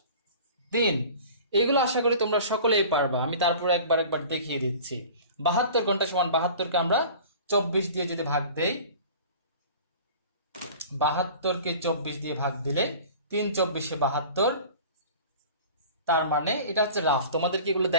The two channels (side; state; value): both; inverted; correlation -0.42